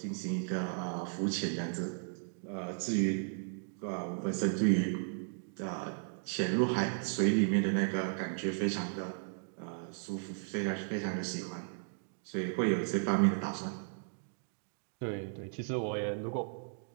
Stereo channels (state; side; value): silent; left; digital silence